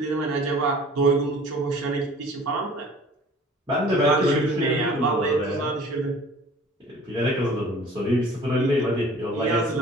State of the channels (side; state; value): both; normal; correlation 0.48